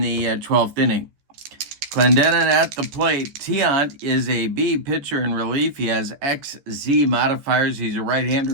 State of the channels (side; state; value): left; late; 14 ms